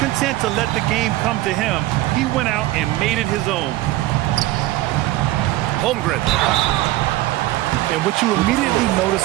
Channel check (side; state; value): left; quieter; 16.9 dB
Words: content to let the game come to him, he went out and made it his own. Holmgren. And what you immediately